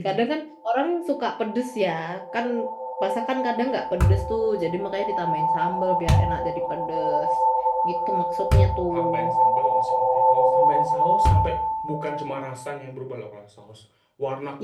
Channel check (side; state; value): both; identical; correlation 1.00